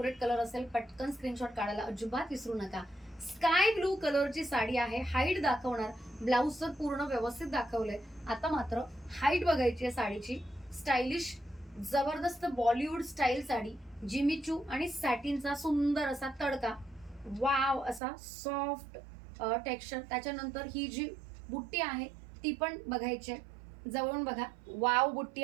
कलर असेल पटकन स्क्रीनशॉट काढायला अजिबात विसरू नका. स्काय ब्लू कलरची साडी आहे. हाईट दाखवणार. ब्लाऊज तर पूर्ण व्यवस्थित दाखवलंय. आता मात्र हाईट बघायची आहे साडीची. स्टायलिश जबरदस्त Bollywood style sari. Jimmy Choo आणि सॅटिनचा सुंदर असा तडका. वाव असा सॉफ्ट टेक्स्चर. त्याच्यानंतर ही जी बुट्टी आहे ती पण बघायची आहे. जवळून बघा. वाव बुट्टी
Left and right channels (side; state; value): left; drops out; at 18.0 s